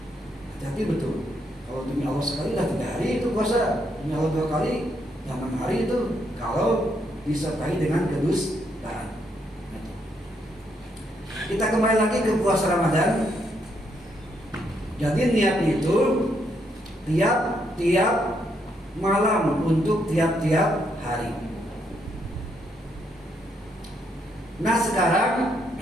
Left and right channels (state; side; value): normal; both; correlation 0.75